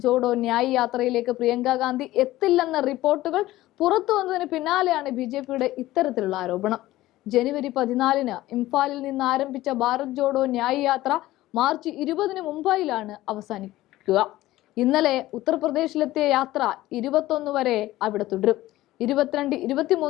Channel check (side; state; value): right; quieter; 16.4 dB